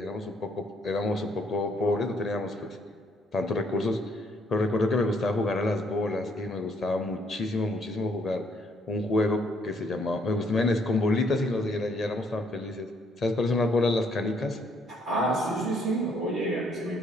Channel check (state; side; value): normal; both; correlation 0.68